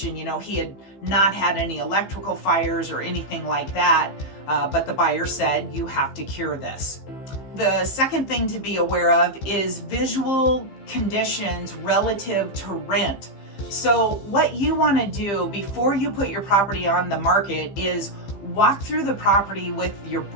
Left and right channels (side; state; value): right; late; 15 ms